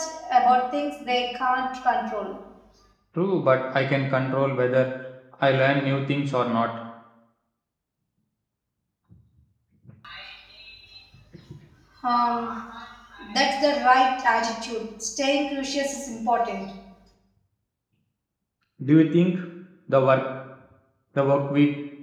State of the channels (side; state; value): both; identical; correlation 1.00